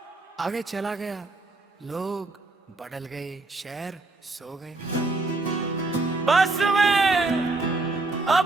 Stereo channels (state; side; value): quieter; left; 3.3 dB